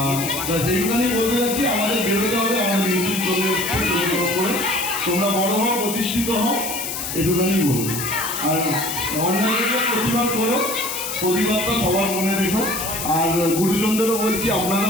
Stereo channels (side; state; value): left; noise; hiss, 5 dB below the sound